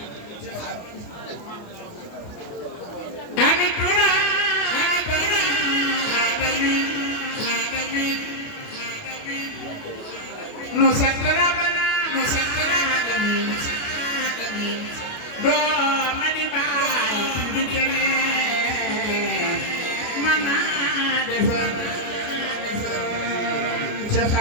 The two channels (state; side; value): late; right; 28 ms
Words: ami tuna no satara bana no satara alamin do mani bay du kene mana defal ci